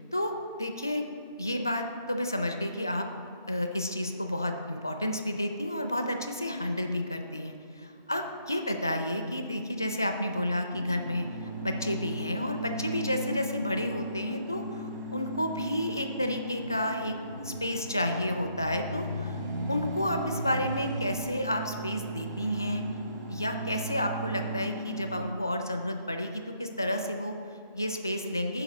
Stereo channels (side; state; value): both; inverted; correlation -0.72